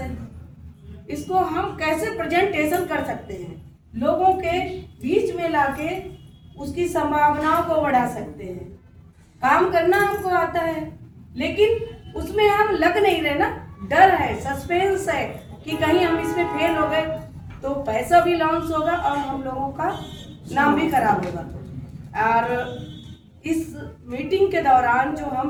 इसको हम कैसे प्रेजेंटेशन कर सकते हैं, लोगों के बीच में लाके उसकी संभावनाओं को बढ़ा सकते हैं। काम करना हमको आता है, लेकिन उसमें हम लग नहीं रहे ना, डर है, सस्पेंस है कि कहीं हम इसमें फेल हो गए तो पैसा भी लॉस होगा और हम लोगों का नाम भी खराब होगा। और इस मीटिंग के दौरान जो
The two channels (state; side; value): identical; both; correlation 1.00